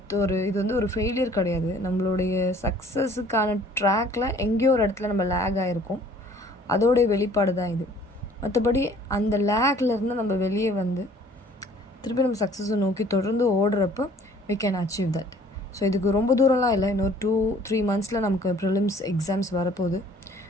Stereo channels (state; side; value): normal; both; correlation 0.55